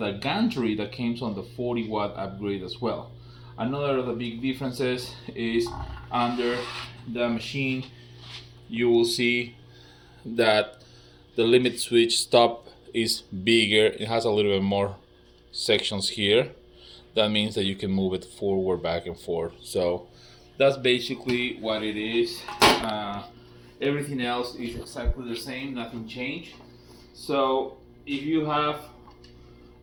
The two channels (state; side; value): identical; both; correlation 1.00